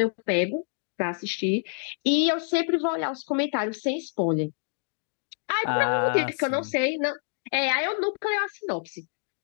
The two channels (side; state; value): right; silent; digital silence